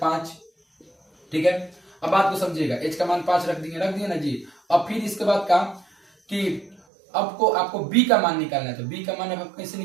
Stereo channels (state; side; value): drops out; left; at 6.8 s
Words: 5। ठीक है, अब बात को समझिएगा, h का मान 5 रख दिए ना जी। अब फिर इसके बाद का कि आपको b का मान निकालना है, तो b का मान अब कैसे